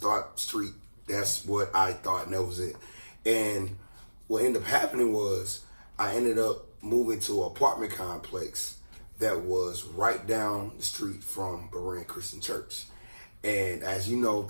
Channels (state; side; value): inverted; both; correlation -1.00